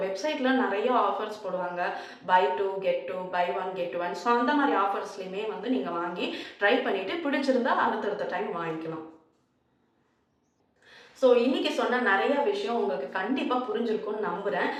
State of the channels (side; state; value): both; identical; correlation 1.00